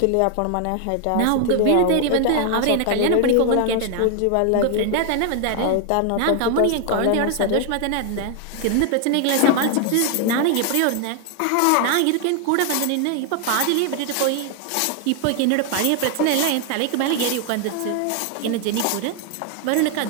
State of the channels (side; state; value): both; different; correlation 0.00